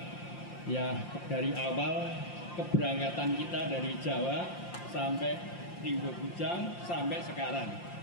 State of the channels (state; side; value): late; right; 5.7 ms